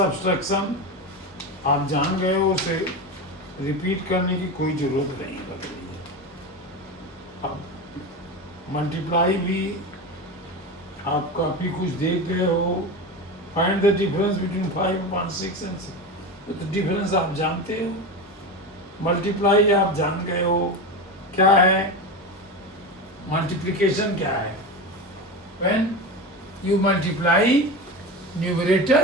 आप जान गए हो, उसे रिपीट करने की कोई ज़रूरत नहीं लग रही है। अब मल्टीप्लाई भी आप काफ़ी कुछ देख गए हो, find the difference between 5/6 and 6। तो डिफरेंस आप जानते हो, मल्टीप्लाई आप जान गए हो, क्या है मल्टीप्लिकेशन क्या है? When you multiply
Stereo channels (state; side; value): normal; both; correlation 0.23